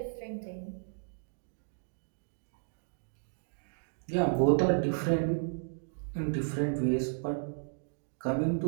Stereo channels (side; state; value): left; silent; digital silence